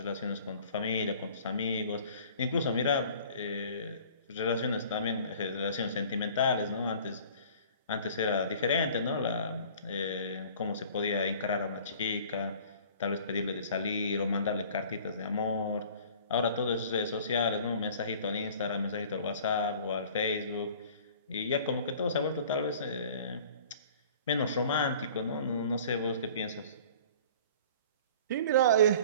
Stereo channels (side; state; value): both; inverted; correlation -0.48